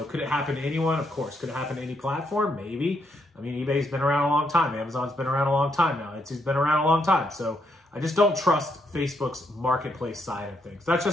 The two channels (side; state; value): both; normal; correlation 0.76